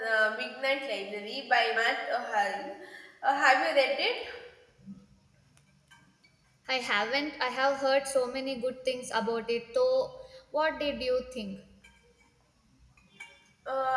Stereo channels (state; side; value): identical; both; correlation 1.00